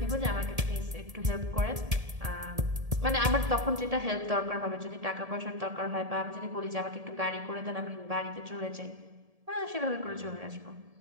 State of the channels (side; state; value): left; late; 1.7 ms